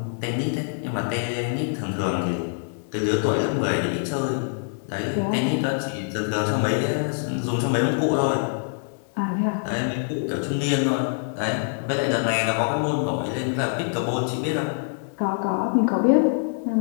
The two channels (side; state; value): right; silent; 57 dB below the other